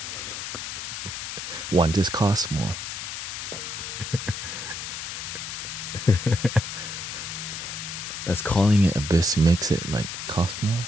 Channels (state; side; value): noise; left; hiss, 6 dB below the sound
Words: One just costs more. That's calling it a bisque makes it like cost more.